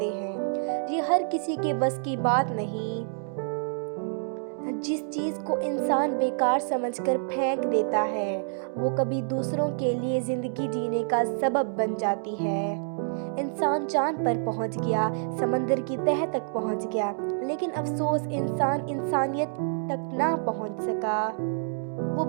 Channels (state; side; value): silent; left; digital silence